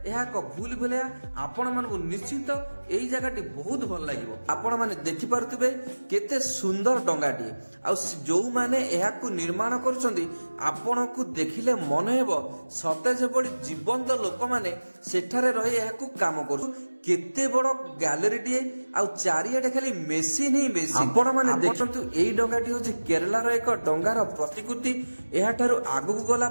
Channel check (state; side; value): inverted; both; correlation -1.00